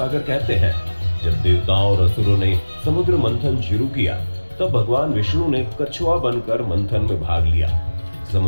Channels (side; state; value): both; inverted; correlation -1.00